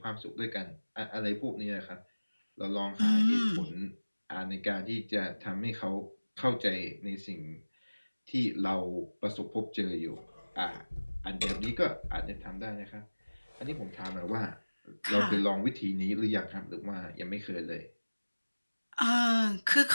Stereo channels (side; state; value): both; inverted; correlation -1.00